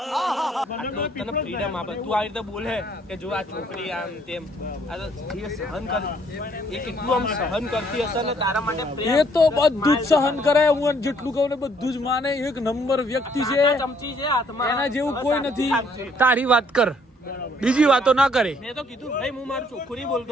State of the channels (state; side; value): normal; both; correlation 0.65